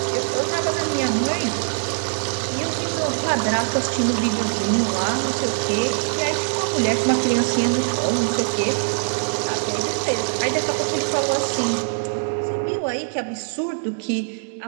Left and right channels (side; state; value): left; silent; digital silence